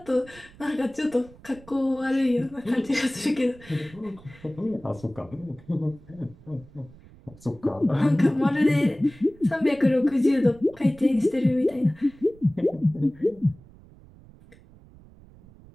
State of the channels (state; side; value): noise; right; rumble, 23 dB below the sound